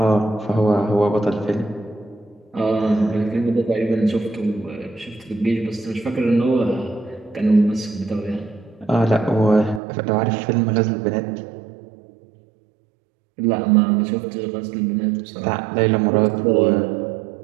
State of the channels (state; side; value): drops out; left; at 9.8 s